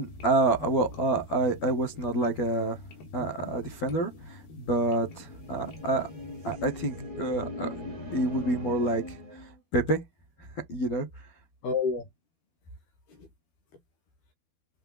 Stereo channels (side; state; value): right; late; 12 ms